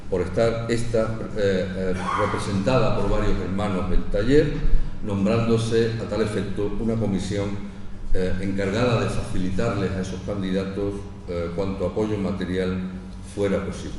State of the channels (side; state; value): both; identical; correlation 1.00